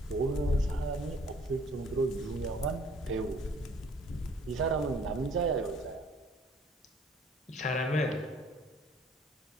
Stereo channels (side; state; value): both; normal; correlation 0.57